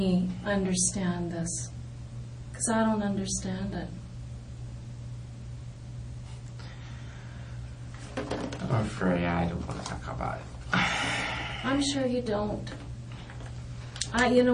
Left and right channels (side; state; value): both; identical; correlation 1.00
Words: understand this. Because I don't understand it. I'm afraid I don't want to talk about it. I'm sure you don't. You know